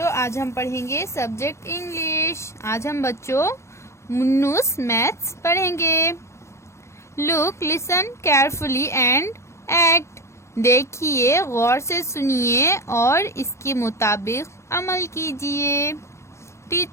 आज हम पढ़ेंगे सब्जेक्ट इंग्लिश। आज हम बच्चों मुन्नूस मैथ्स पढ़ेंगे। Look, listen carefully and act. देखिए, गौर से सुनिए और इसके मुताबिक अमल कीजिए।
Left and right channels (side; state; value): right; late; 0.13 ms